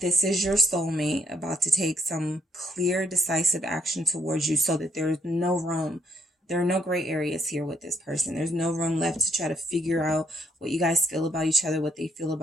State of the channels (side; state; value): both; normal; correlation 0.72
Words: is your soulmate about to take some clear, decisive action towards you so that there's no room. There are no gray areas here with this person. There's no room left to try to figure out what you guys feel about each other, what they feel